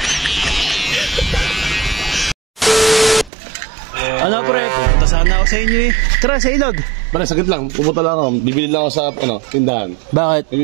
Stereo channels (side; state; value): left; drops out; at 3.3 s